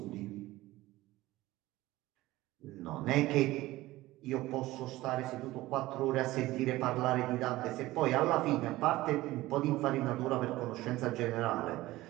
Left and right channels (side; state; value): left; quieter; 17.7 dB